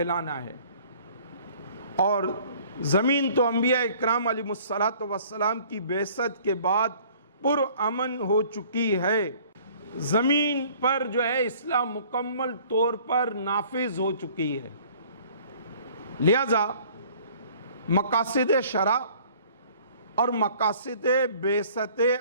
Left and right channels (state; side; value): inverted; both; correlation -0.54